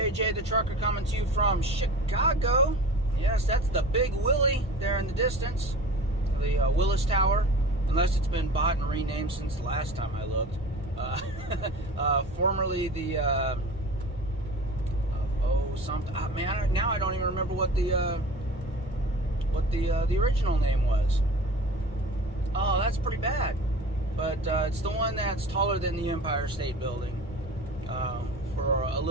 the Trucker coming to you from Chicago. Yes, that's the Big Willie there in the distance, the Willis Tower, unless it's been bought and renamed since the last time I looked. Formerly the, man, now I don't even remember what the original name was. Oh, that's pretty bad. But it's the one that's taller than the Empire State Building. For a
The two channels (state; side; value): normal; both; correlation 0.38